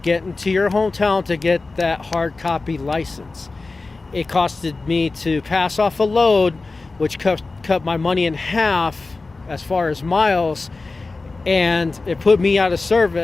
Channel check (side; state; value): right; quieter; 3.6 dB